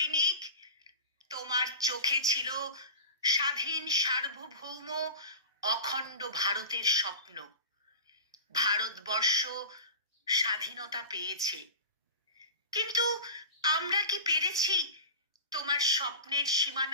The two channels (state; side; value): inverted; both; correlation -0.32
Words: তোমার চোখে ছিল স্বাধীন সার্বভৌম অখণ্ড ভারতের স্বপ্ন। ভারতবর্ষ স্বাধীনতা পেয়েছে, কিন্তু আমরা কি পেরেছি তোমার স্বপ্নের